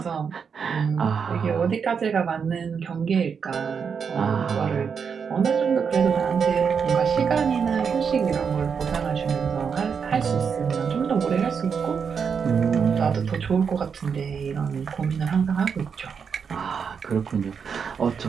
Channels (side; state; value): left; quieter; 6.4 dB